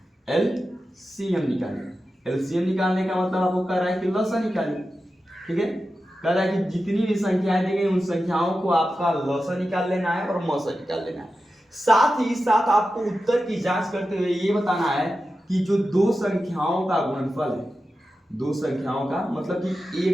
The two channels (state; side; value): normal; both; correlation 0.92